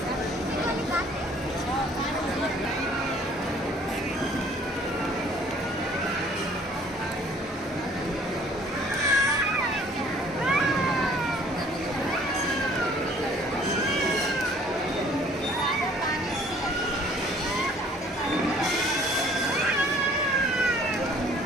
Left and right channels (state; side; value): normal; both; correlation 0.56